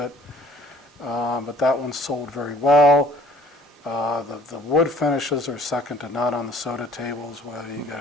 But that one sold very well. The wood finishes are second to none on the SOTA tables, whether you get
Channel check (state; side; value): normal; both; correlation 0.55